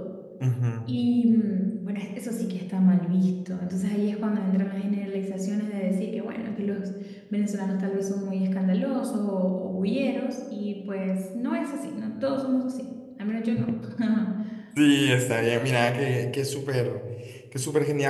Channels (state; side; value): identical; both; correlation 1.00